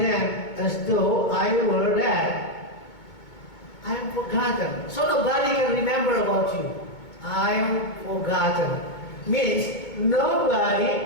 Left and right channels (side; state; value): right; late; 2.2 ms